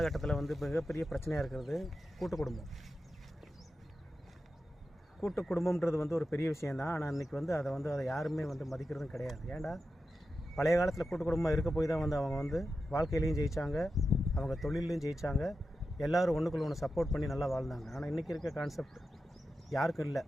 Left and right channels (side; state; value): both; normal; correlation 0.91